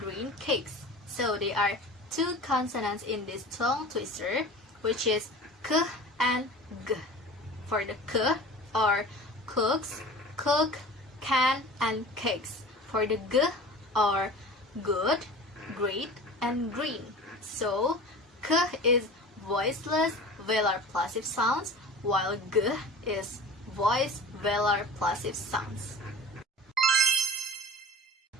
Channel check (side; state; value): both; normal; correlation 0.38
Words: cakes. So there are 2 consonants in this tongue twister, which is k and g. For the k are cooks, cook, can, and cakes. For the g are good, great, and green. So k is voiceless velar plosive sounds, while g is voiced velar plosive sounds.